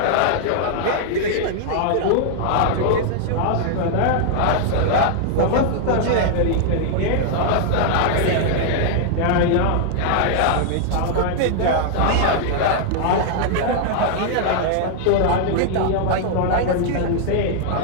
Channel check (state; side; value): different; both; correlation -0.01